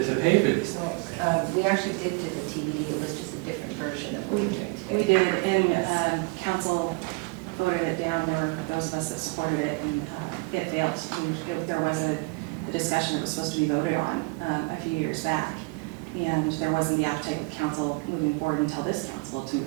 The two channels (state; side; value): quieter; left; 28.4 dB